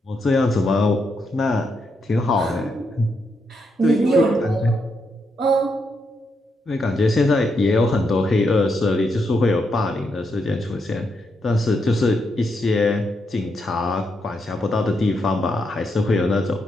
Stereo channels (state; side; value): normal; both; correlation 0.81